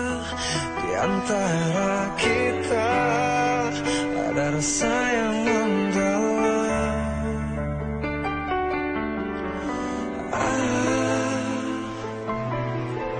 di antara kita ada rasa yang mendalam?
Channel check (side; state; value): both; identical; correlation 1.00